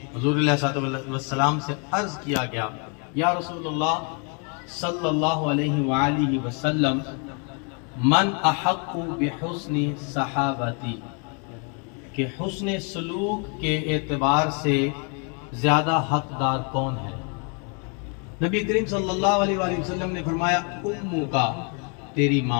حضور علیہ السلام سے عرض کیا گیا، یا رسول اللہ صلی اللہ علیہ وآلہ وسلم، من احق بحسن صحابتی، کہ حسن سلوک کے اعتبار سے زیادہ حقدار کون ہے؟ نبی کریم صلی اللہ علیہ وآلہ وسلم نے فرمایا، امو کا، تیری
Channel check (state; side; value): quieter; right; 37.7 dB